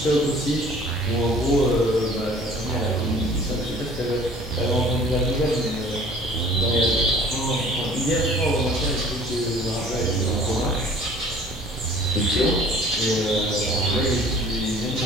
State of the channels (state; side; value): normal; both; correlation 0.50